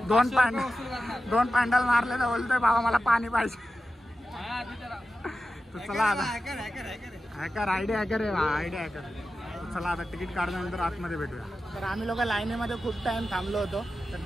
2 पॅन्डल मारले तर बोलतोय बाबा मला पाणी पाहिजे। तर चला आता हॅकर आयडिया हॅकर आहे, आयडिया हॅकर। चला आता तिकीट काढल्यानंतर आतमध्ये भेटूया। तर आम्ही लोक लाईनीमध्ये खूप टाइम थांबलो होतो, तर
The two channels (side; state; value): both; normal; correlation 0.92